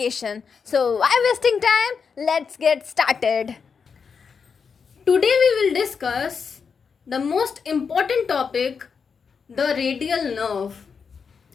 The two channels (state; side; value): quieter; right; 5.9 dB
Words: So why wasting time? Let's get started. Today we will discuss the most important topic, the radial nerve.